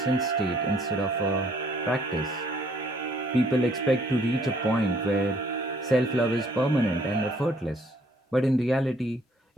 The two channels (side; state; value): both; normal; correlation 0.63